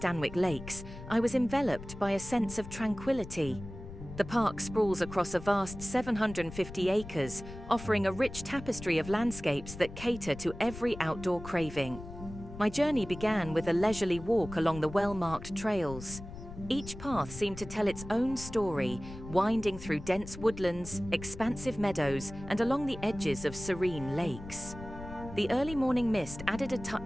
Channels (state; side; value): noise; left; rumble, 13 dB below the sound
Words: Lakes, I was enveloped by a sense of tranquility. The park sprawls across a vast 750 acres, offering a rich tapestry of landscapes that cater to every outdoor craving. My journey began with a leisurely walk along the well-marked trails. Each path seemed to tell its own story, winding through dense woodlands, expansive meadows, and along the edges of serene lakes. The early morning mist added a